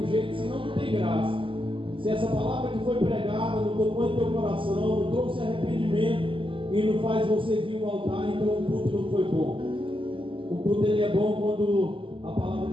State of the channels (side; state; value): left; late; 0.25 ms